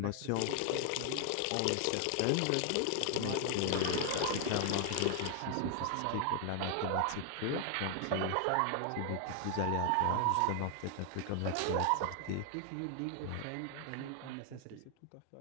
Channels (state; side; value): different; both; correlation 0.00